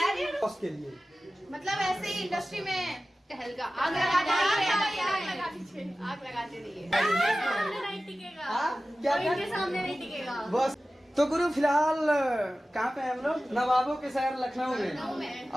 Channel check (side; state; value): both; normal; correlation 0.96